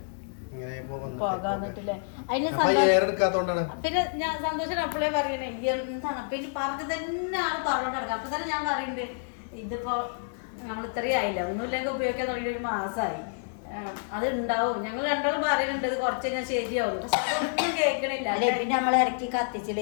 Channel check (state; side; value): silent; right; digital silence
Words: ഇങ്ങനെ പോകാന്നിട്ടില്ലേ. എടുക്കാത്തോണ്ടാണ്. പിന്നെ ഞാൻ സന്തോഷം അപ്പോഴേ പറയണേ എന്താണ് പിന്നെ പറഞ്ഞു തന്നെ ആള് പറഞ്ഞോണ്ട് കിടക്കുക. അപ്പൊ തന്നെ ഞാൻ പറയുന്നുണ്ട്, ഇതിപ്പോ നമ്മൾ ഇത്രയും ആയില്ല, ഒന്നുമില്ലെങ്കിൽ ഉപയോഗിക്കാൻ തുടങ്ങിയ ഒരു മാസമായി, അത് ഉണ്ടാവും. ഞങ്ങൾ രണ്ടാളും പറയുന്നുണ്ട് ഇത് കുറച്ച് കഴിഞ്ഞാൽ ശരിയാവും. പക്ഷെ അതൊന്നും കേൾക്കണില്ല. പിന്നെ നമ്മൾ ഇറക്കി കത്തിച്ചില്ല,